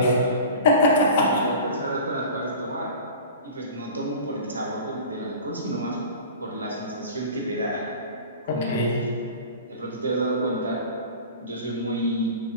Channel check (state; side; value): inverted; both; correlation -0.37